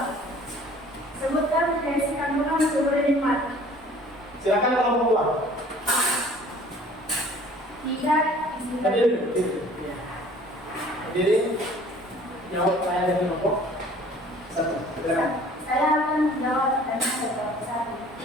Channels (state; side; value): normal; both; correlation 0.51